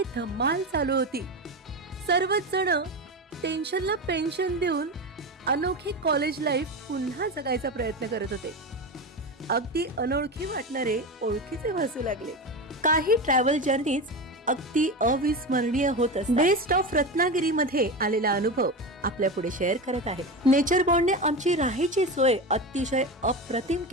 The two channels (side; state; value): both; normal; correlation 0.22